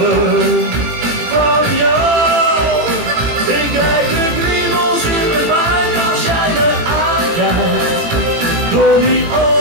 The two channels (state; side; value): late; left; 18 ms